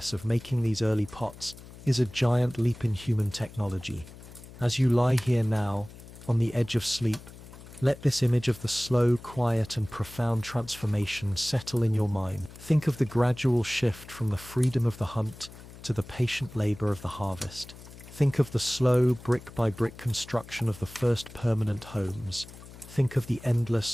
of making these early pots is a giant leap in human technology. As you lie here now, on the edge of sleep, let this image of the slow, quiet, and profound transformation settle in your mind. Think of the gradual shift from the freedom of the hunt to the patient labor of the harvest. Think of the slow, brick-by-brick construction of the first permanent homes. Think of the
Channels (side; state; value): left; noise; hum, 17 dB below the sound